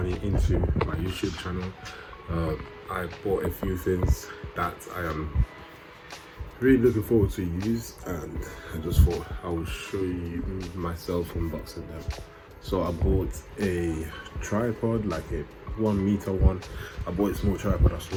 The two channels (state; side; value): identical; both; correlation 1.00